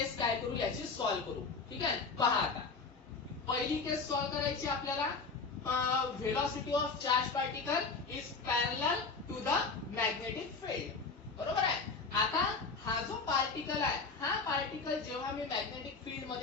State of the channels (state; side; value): quieter; right; 4.5 dB